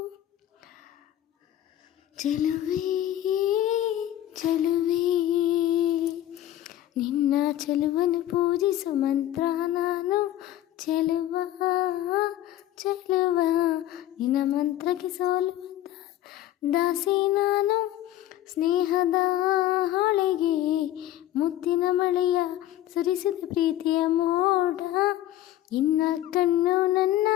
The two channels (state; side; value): quieter; right; 13.1 dB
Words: ಚೆಲುವೆ ಚೆಲುವೆ ನಿನ್ನ ಚೆಲುವನ್ನು ಪೂಜಿಸು ಮಂತ್ರ ನಾನು, ಚೆಲುವ ಚೆಲುವ ನಿನ್ನ ಮಂತ್ರಕ್ಕೆ ಸೋಲುವಂತ ದಾಸಿ ನಾನು. ಸ್ನೇಹದ ಹೊಳೆಗೆ ಮುತ್ತಿನ ಮಳೆಯ ಸುರಿಸಿದ ಪ್ರೀತಿಯ ಮೋಡ, ನಿನ್ನ ಕಣ್ಣು ನನ್ನ